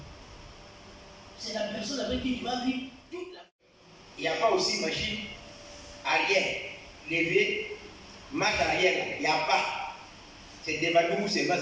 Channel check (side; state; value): both; identical; correlation 1.00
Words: C'est la personne avec qui tu vas vivre toute la vie. Il n'y a pas aussi machine arrière, lever, marche arrière, il n'y a pas. C'est débattu, c'est pas